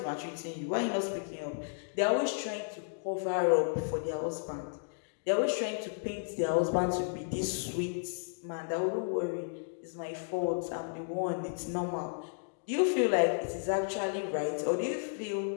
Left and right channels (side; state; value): right; silent; digital silence